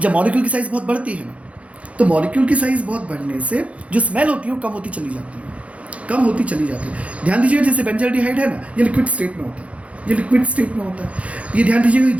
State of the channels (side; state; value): left; late; 0.064 ms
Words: जब मॉलिक्यूल की साइज़ बहुत बढ़ती है ना, तो मॉलिक्यूल की साइज़ बहुत बढ़ने से जो स्मेल होती है वो कम होती चली जाती है। ध्यान दीजिएगा, जैसे बेंजल्डिहाइड है ना, ये लिक्विड स्टेट में होता है, ये ध्यान दीजिएगा,